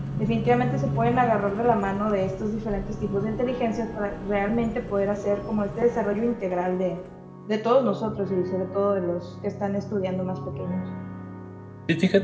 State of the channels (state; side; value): identical; both; correlation 1.00